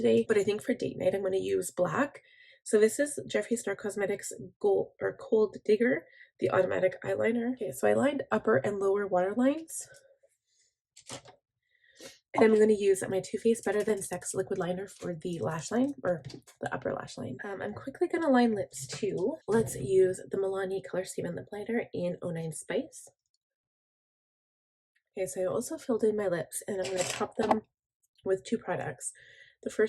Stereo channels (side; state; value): both; identical; correlation 1.00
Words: but I think for date night I'm going to use black. So this is Jeffree Star Cosmetics Gold or Cold Digger, the automatic eyeliner. Okay, so I lined upper and lower waterlines. And I'm going to use my Too Faced Better Than Sex liquid liner for the lash line, or the upper lash line. I'm quickly going to line lips too. Let's use the Milani Color Statement Lip Liner in 09 Spice. Okay, so I also filled in my lips and I'm going to top them with 2 products. The